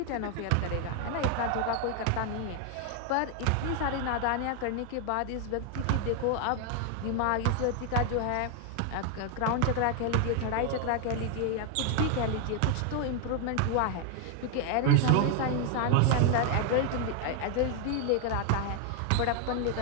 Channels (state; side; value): different; both; correlation 0.00